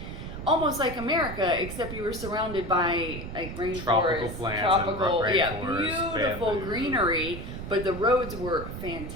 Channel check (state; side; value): noise; right; rumble, 8 dB below the sound